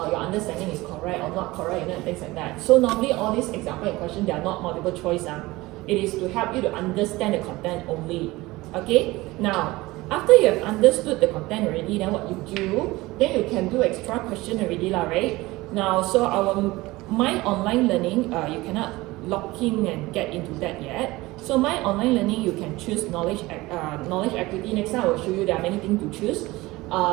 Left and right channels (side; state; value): left; quieter; 20.1 dB